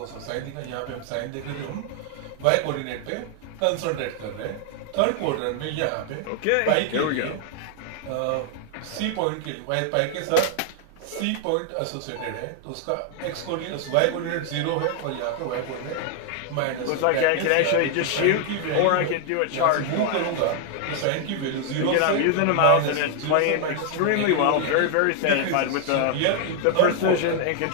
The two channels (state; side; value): different; both; correlation 0.00